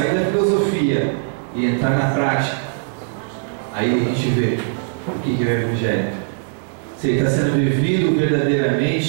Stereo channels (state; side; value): silent; left; 66 dB below the other